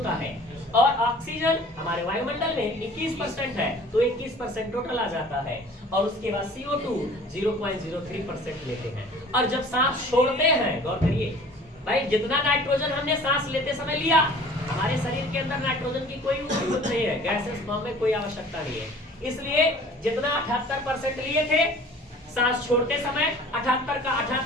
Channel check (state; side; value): normal; both; correlation 0.48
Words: है, और ऑक्सीजन हमारे वायुमंडल में 21% है तो 21% टोटल आ जाता है, और उसके बाद CO2 0.03% लेते हैं। और जब सांस छोड़ते हैं, गौर करिए भाई, जितना नाइट्रोजन हमने सांस लेते समय लिया, हमारे शरीर के अंदर नाइट्रोजन की कोई जरूरत नहीं है, गैसेस फॉर्म में कोई आवश्यकता नहीं है। इसलिए जितना 78% लिए थे, सांस छोड़ते समय 78 का